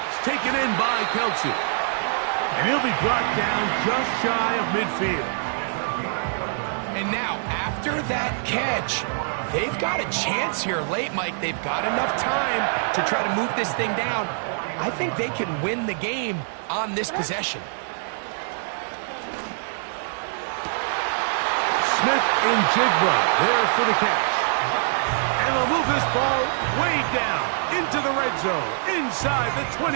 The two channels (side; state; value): left; silent; 62 dB below the other